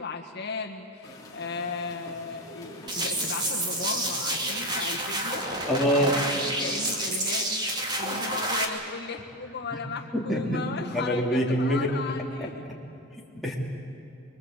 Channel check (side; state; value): both; normal; correlation 0.18